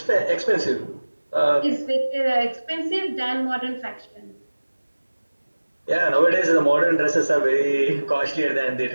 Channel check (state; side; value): inverted; both; correlation -1.00